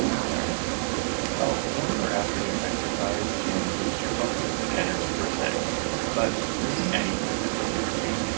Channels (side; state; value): left; silent; digital silence